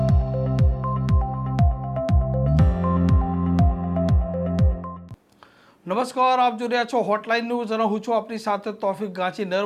નમસ્કાર, આપ જોઈ રહ્યા છો હોટલાઇન ન્યૂઝ અને હું છું આપની સાથે તોફિક ગાંચી।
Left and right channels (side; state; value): both; identical; correlation 1.00